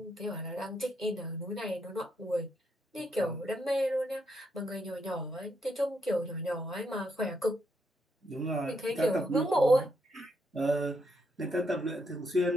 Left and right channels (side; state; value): both; normal; correlation 0.78